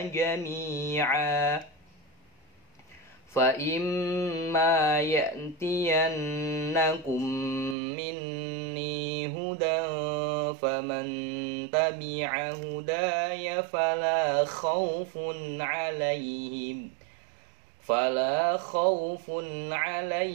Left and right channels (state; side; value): drops out; left; at 7.8 s